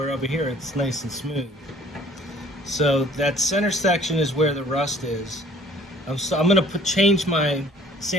over here it's nice and smooth. So that center section is where the rust is. I'm going to change my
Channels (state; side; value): normal; both; correlation 0.53